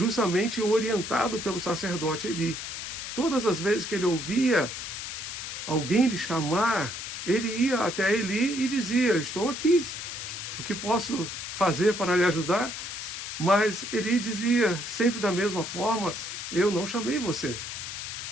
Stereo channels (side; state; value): left; noise; hiss, 7 dB below the sound